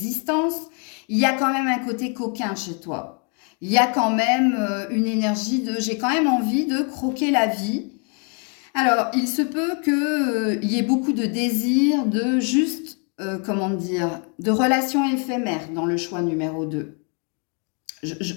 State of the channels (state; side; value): quieter; right; 38.8 dB